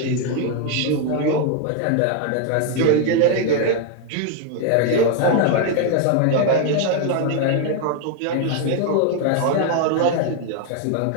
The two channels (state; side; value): different; both; correlation 0.00